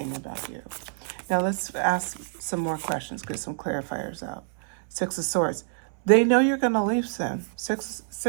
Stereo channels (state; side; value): silent; left; 60 dB below the other